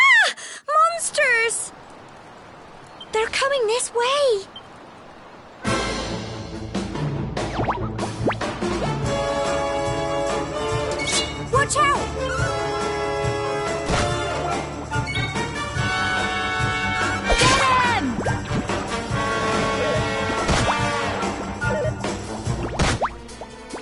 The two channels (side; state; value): both; identical; correlation 1.00